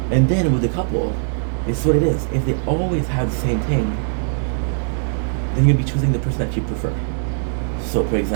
And then with the couple, it's what it is. If they always have the same thing, then you'll be choosing the person that you prefer. So, for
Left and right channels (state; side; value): silent; left; digital silence